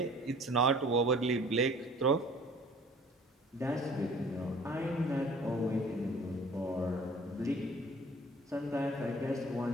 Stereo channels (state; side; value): normal; both; correlation 0.50